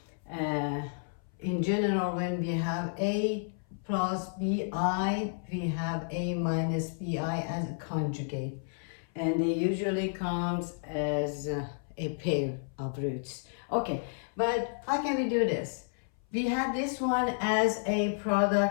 Uh, in general, when we have a plus bi, we have a minus bi as a conjugate. And they usually comes as a pair of roots. Okay, but how can we do this? We have this one as a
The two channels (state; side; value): silent; right; 57 dB below the other